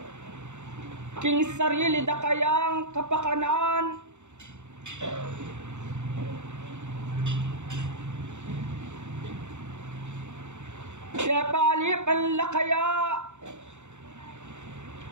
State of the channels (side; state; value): left; late; 0.83 ms